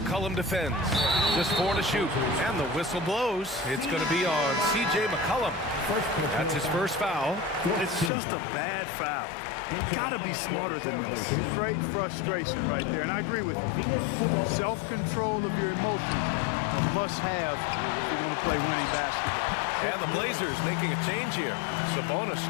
defends. Just 4 to shoot. And the whistle blows. It's going to be on C.J. McCollum. That's his first foul. It's just a bad foul. Gotta be smarter than this. Straight frustration right there, and I agree with you. Self-control of your emotions a must-have if you're going to play winning basketball. And the Blazers making a change here. Sabonis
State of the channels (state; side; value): drops out; right; at 8.1 s